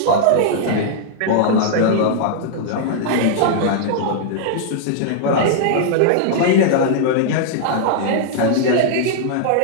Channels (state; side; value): different; both; correlation -0.01